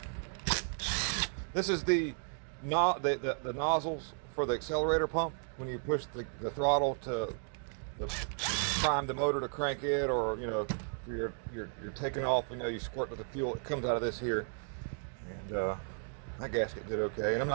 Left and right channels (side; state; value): left; silent; 55 dB below the other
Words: this is the nozzles for the accelerator pump. When you push the throttle to prime the motor to crank it, or you're taking off, you squirt with the fuel, it comes out of this here. And my gasket did okay, and I'm